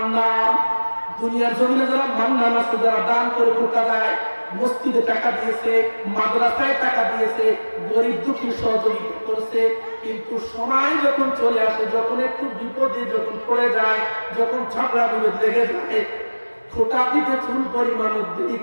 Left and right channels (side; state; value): both; inverted; correlation -1.00